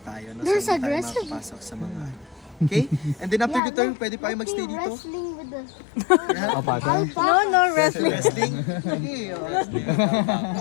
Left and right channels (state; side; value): drops out; right; at 3.6 s